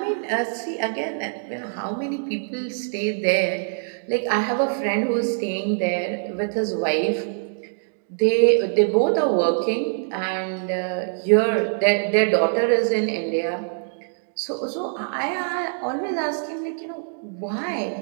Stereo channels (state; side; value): silent; left; digital silence